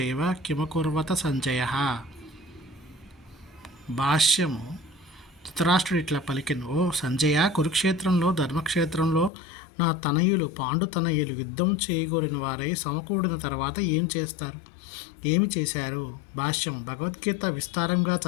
కిమకుర్వత సంజయ. భాష్యము. ధృతరాష్ట్రుడు ఇట్లా పలికెను: ఓ సంజయ, కురుక్షేత్రంలో ధర్మక్షేత్రంలో నా తనయులు పాండు తనయులు యుద్ధం చేయగోరిన వారై సమకూడిన తర్వాత ఏమి చేశారు? భాష్యము. భగవద్గీత విస్తారంగా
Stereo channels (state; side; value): drops out; right; at 9.3 s